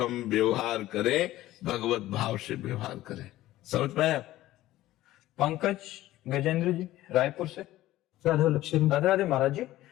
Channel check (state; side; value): quieter; right; 15.5 dB